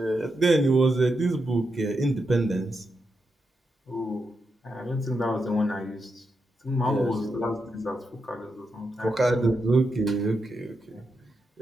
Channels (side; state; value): both; normal; correlation 0.85